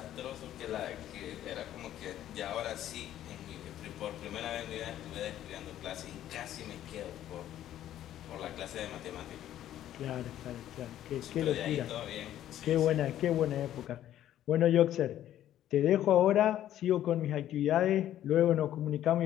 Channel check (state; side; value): quieter; right; 12.1 dB